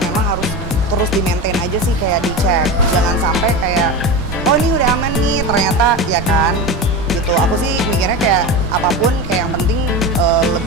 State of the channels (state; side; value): normal; both; correlation 0.23